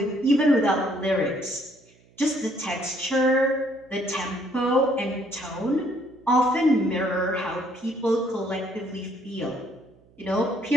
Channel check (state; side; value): noise; right; hum, 30 dB below the sound